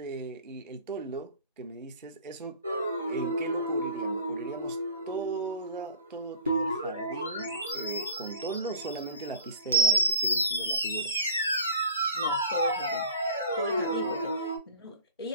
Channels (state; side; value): inverted; both; correlation -0.42